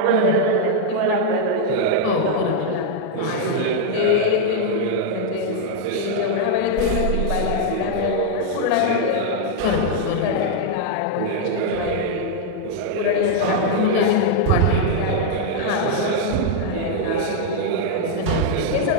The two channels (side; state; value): both; different; correlation -0.01